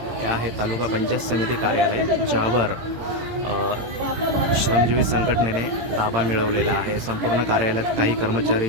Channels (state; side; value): late; left; 18 ms